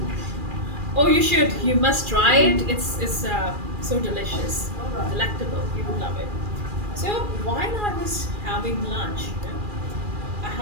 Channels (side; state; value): left; late; 2.4 ms